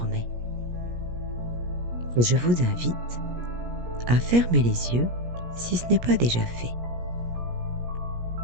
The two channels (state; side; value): late; left; 17 ms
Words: Et je vous invite à fermer les yeux si ce n'est pas déjà fait.